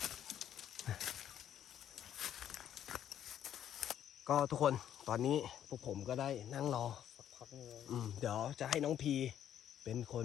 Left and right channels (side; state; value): right; quieter; 10.3 dB